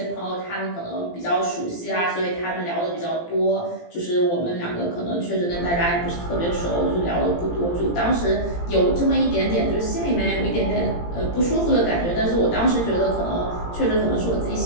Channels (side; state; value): right; late; 17 ms